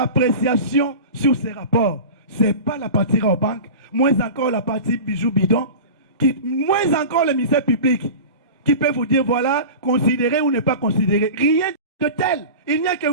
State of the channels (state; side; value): inverted; both; correlation -0.33